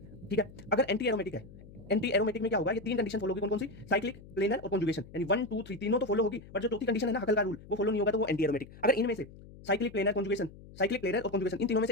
ठीक है। अगर एंटी एरोमेटिक है, एंटी एरोमेटिक में क्या होगा, ये तीन कंडीशन फॉलो होगी, कौन सी, साइक्लिक, प्लेनर और कंजुगेशन, यानी 1 2 3 तीनों तो फॉलो होगी, बट जो चौथी कंडीशन है ना हकल का रूल, वो फॉलो नहीं होगा, तो वो एंटी एरोमेटिक। अगर इनमें से cyclic, planar, conjugation, cyclic, planar और कंजुगेशन इन तीनों में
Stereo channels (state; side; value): noise; left; hum, 19 dB below the sound